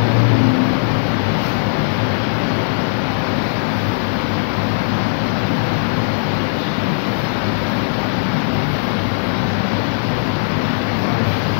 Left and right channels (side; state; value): right; silent; 65 dB below the other